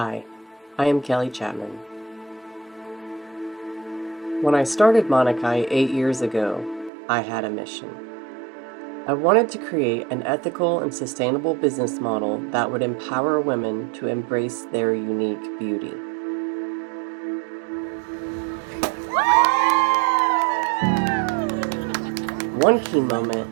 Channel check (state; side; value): drops out; left; at 6.9 s